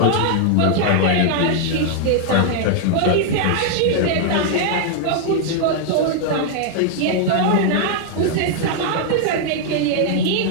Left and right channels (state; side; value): different; both; correlation 0.00